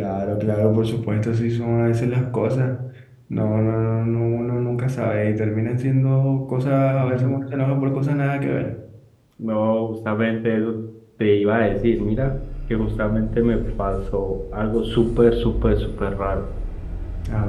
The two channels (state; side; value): identical; both; correlation 1.00